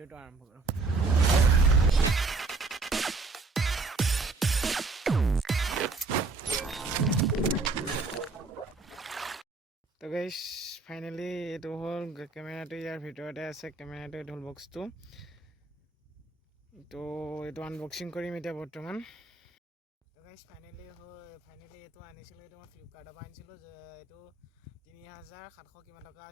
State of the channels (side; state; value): left; quieter; 3.9 dB